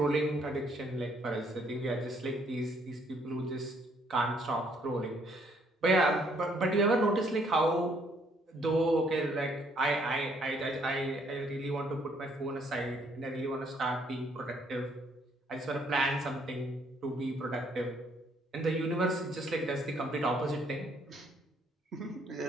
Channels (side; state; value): both; normal; correlation 0.67